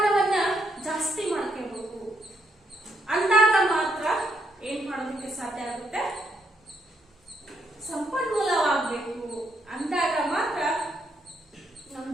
ಮಾಡ್ಕೊಳ್ಳಿಕ್ಕೆ ಸಾಧ್ಯ ಆಗುತ್ತೆ? ಸಂಪನ್ಮೂಲವಾಗಬೇಕು. ಅಂದಾಗ ಮಾತ್ರ ನಮ್ಮ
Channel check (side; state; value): both; normal; correlation 0.76